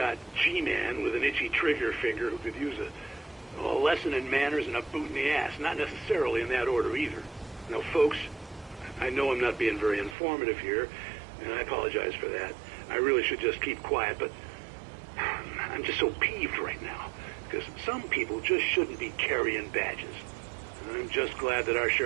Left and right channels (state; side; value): drops out; left; at 10.2 s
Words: G-man with an itchy trigger finger who could use a lesson in manners and a boot in the ass. Not necessarily in that order, either. Now, folks, I know I'm not being very informative here, and I apologize for that. I really should just keep quiet, but I'm just so peeved right now, because some people just shouldn't be carrying badges. I'm just glad that our